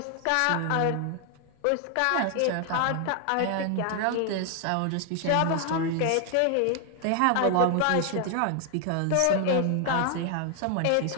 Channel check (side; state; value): both; different; correlation 0.00